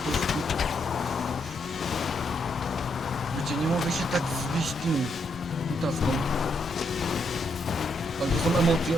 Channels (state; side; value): normal; both; correlation 0.77